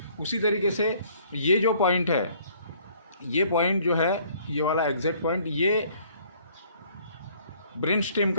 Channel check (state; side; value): inverted; both; correlation -0.59